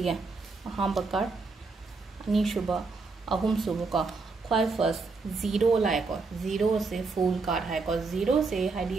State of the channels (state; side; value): quieter; left; 4.1 dB